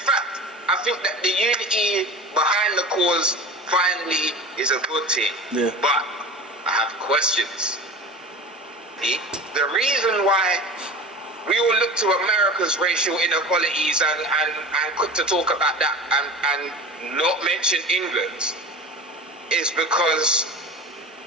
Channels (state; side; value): normal; both; correlation 0.34